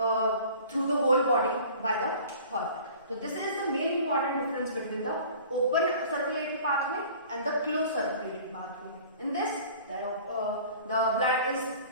through the whole body by the heart. So this is the main important difference between the open circulatory pathway and the closed circulatory pathway. In this, the blood is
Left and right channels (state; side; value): inverted; both; correlation -0.46